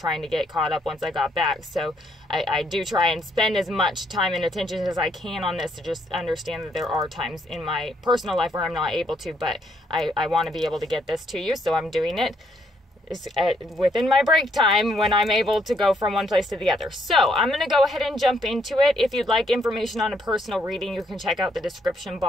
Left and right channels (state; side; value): normal; both; correlation 0.72